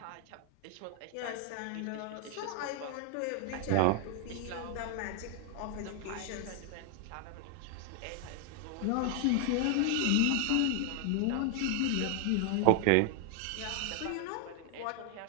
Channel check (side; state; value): both; different; correlation 0.00